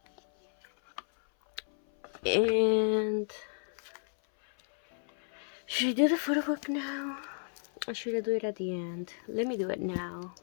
And should I do the photo book now, or should I do it at the end? Let me do it now.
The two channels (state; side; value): silent; right; 56 dB below the other